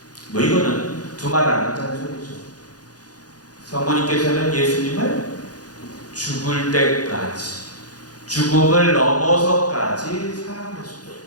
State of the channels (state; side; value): late; right; 0.68 ms